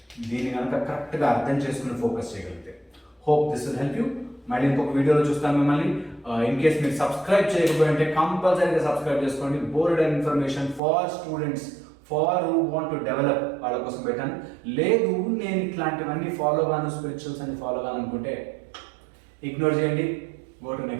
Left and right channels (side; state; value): left; drops out; at 10.8 s